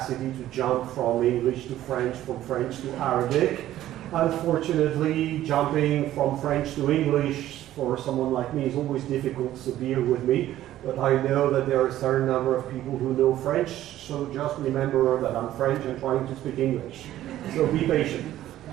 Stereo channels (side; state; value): left; quieter; 13.5 dB